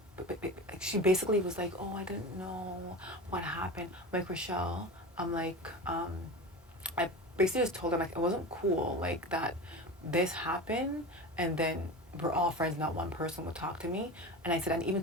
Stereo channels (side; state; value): both; normal; correlation 0.29